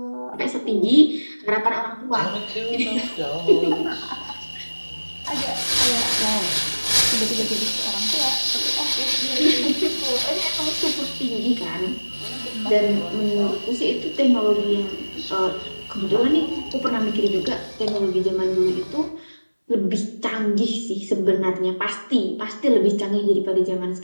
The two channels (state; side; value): inverted; both; correlation -1.00